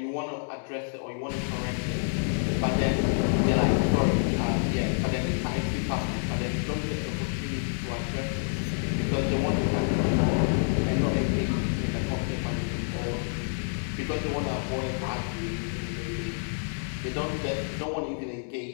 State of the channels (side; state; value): right; silent; digital silence